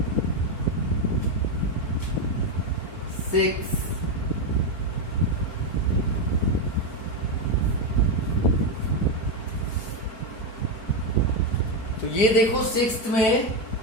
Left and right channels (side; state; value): right; late; 4.4 ms